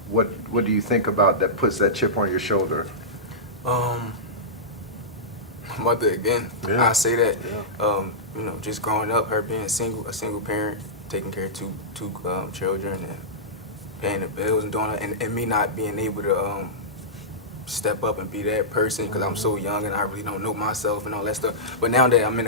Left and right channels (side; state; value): right; noise; hum, 30 dB below the sound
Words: what do you think about that puts that chip on your shoulder? Mother again, Yeah. I say that, just growing up, her being a single parent, taking care of two children and paying the bills and doing that, and me not being able to step up and be that person because I'm so young and I really don't know myself and all that stuff. But now that I'm in